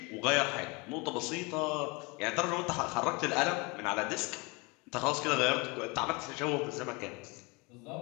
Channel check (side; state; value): right; quieter; 27.8 dB